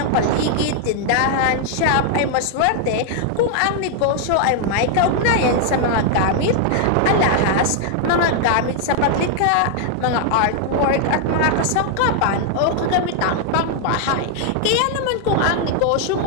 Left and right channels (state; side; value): different; both; correlation 0.00